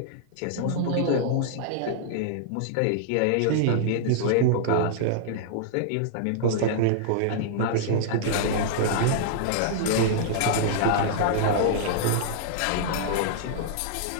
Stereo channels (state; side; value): different; both; correlation -0.01